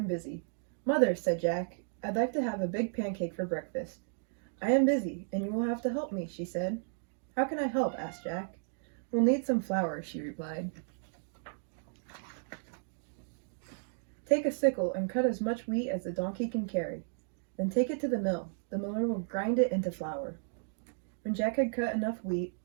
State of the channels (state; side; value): silent; left; digital silence